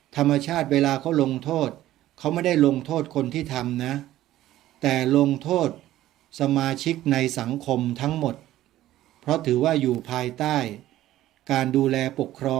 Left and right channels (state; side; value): quieter; left; 14.3 dB